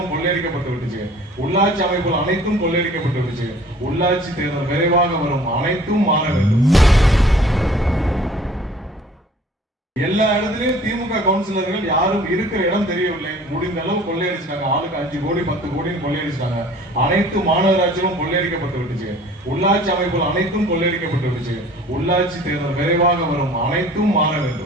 கொள்ளையடிக்கப்பட்டு விட்டுச்சு. உள்ளாட்சி அமைப்புகள் அனைத்தும் கொள்ளையடிக்கப்பட்டு விட்டுச்சு. உள்ளாட்சி தேர்தல் விரைவாக வரும். அனைத்தும் மாற வேண்டும். எல்லா இடத்துலயும் திமுக கவுன்சிலர்கள் யாரும் இருக்கிற இடம் தெரியவில்லை. முடிந்த அளவு கொள்ளையடிச்சிட்டாங்க. ஆளுக்கு 5 கோடி 10 கோடின்னு கொள்ளையடிச்சிட்டாங்க. அனைத்து மாநகராட்சிகளும் கொள்ளையடிக்கப்பட்டு விட்டுச்சு. உள்ளாட்சி அமைப்புகள் அனைத்தும் கொள்ளையடிக்கப்பட்டு விட்டுச்சு. உள்ளாட்சி தேர்தல் விரைவாக வரும். அனைத்தும் மாற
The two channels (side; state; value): both; normal; correlation 0.50